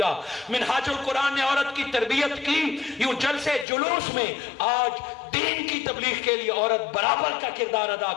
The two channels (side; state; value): right; drops out; at 3.7 s